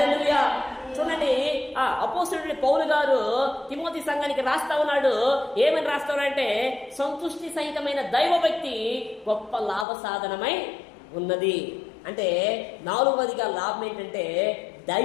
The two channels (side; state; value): right; drops out; at 9.9 s